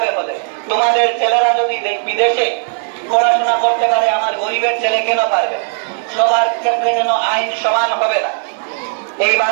হলে? তোমাদের ছেলেরা যদি বিদেশে পড়াশোনা করতে পারে, আমার গরিবের ছেলে কেন পারবে? সবার ক্ষেত্রে কেন আইন সমান হবে না? এই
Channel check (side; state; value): left; silent; 65 dB below the other